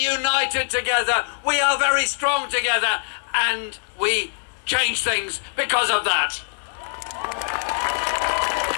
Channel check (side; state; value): right; silent; digital silence